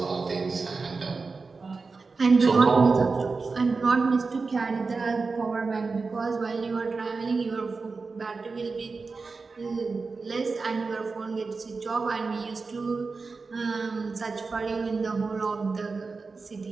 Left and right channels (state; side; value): quieter; left; 4.3 dB